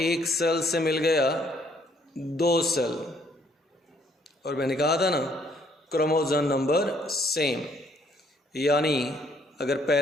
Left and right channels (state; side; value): normal; both; correlation 0.65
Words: सेल से मिल गया 2 सेल, और मैंने कहा था ना क्रोमोसोम नंबर सेम। यानी अगर